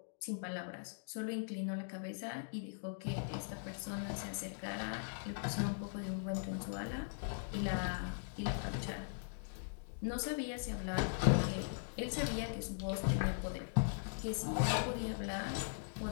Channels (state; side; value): silent; right; digital silence